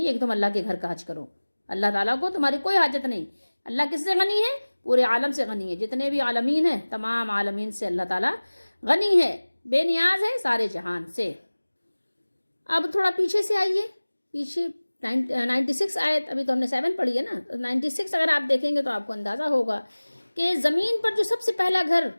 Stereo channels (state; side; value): inverted; both; correlation -1.00